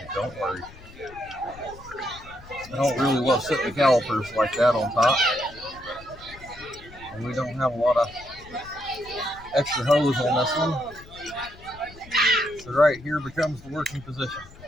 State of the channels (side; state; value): left; noise; rumble, 19 dB below the sound